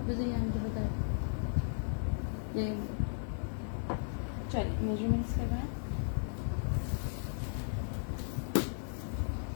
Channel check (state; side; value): silent; right; digital silence